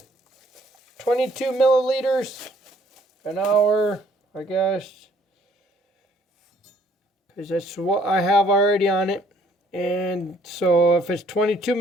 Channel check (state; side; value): normal; both; correlation 0.62